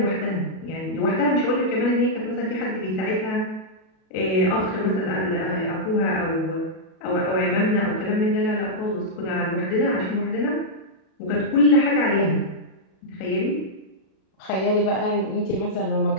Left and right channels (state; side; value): late; right; 37 ms